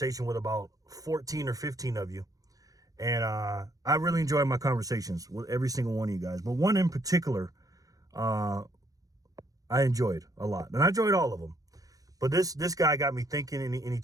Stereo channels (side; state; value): left; late; 0.17 ms